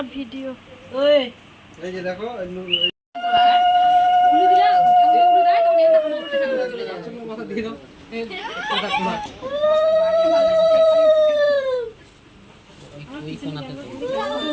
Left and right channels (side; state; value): both; identical; correlation 1.00